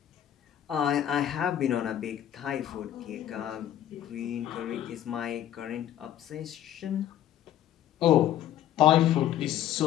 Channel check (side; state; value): right; quieter; 11.5 dB